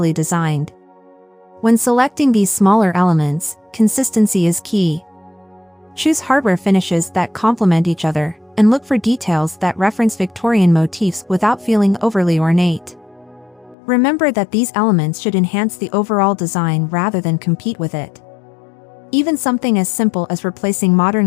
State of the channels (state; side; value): drops out; right; at 13.8 s